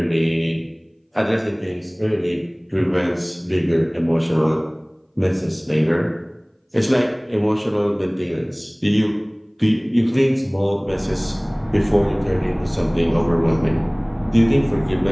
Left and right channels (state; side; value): identical; both; correlation 1.00